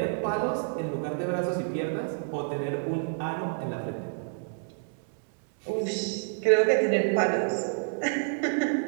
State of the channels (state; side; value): silent; left; digital silence